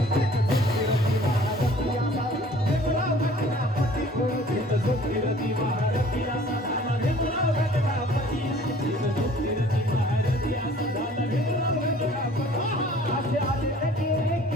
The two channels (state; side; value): normal; both; correlation 0.52